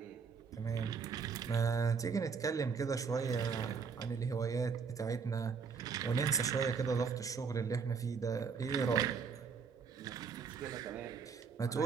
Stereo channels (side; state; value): left; quieter; 5.7 dB